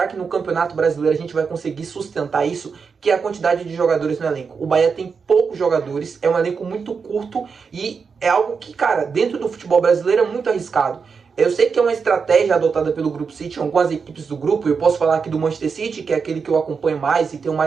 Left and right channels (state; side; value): quieter; left; 5.5 dB